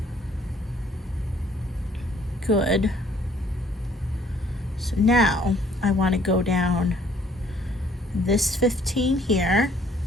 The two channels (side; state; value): both; normal; correlation 0.60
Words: good. So now I want to go down this 15 here.